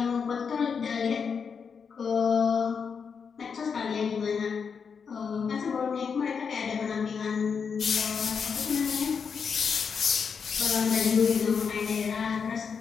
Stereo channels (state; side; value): quieter; right; 6.1 dB